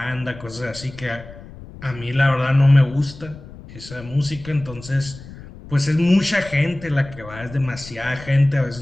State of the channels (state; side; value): noise; left; rumble, 17 dB below the sound